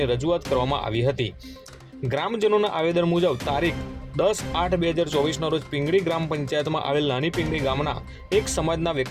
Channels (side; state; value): both; identical; correlation 1.00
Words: રજૂઆત કરવામાં આવી હતી। ગ્રામજનોના આવેદન મુજબ તારીખ 10/8/2024ના રોજ પિંગળી ગ્રામ પંચાયતમાં આવેલ નાની પિંગળી ગામના એક સમાજના